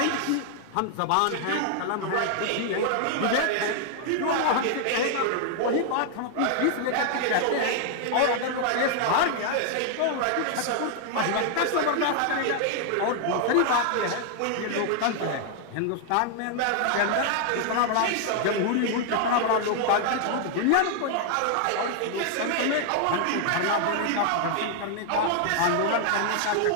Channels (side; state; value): both; different; correlation 0.00